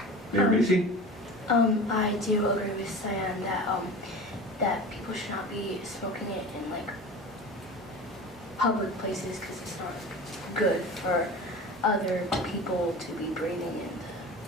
Mayor Macy? I do agree with Cyan that people should not be smoking it in public places because it's not good for other people to be breathing in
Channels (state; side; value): normal; both; correlation 0.35